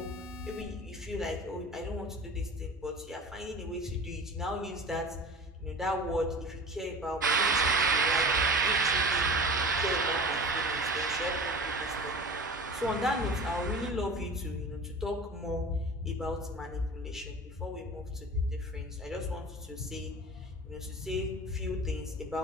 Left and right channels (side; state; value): both; normal; correlation 0.37